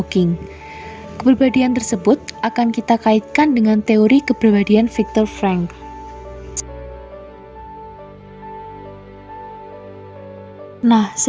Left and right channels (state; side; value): identical; both; correlation 1.00